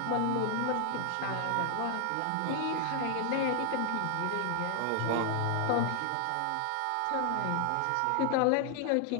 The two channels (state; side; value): different; both; correlation 0.00